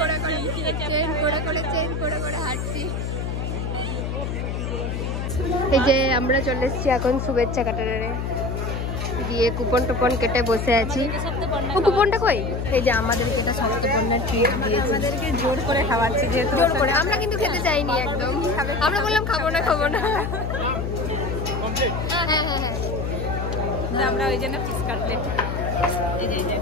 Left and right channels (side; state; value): left; noise; hum, 3 dB below the sound